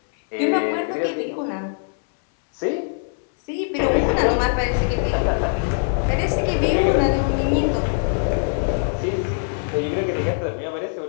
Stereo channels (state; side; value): silent; right; 63 dB below the other